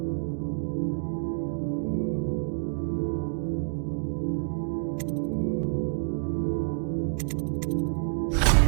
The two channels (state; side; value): silent; left; digital silence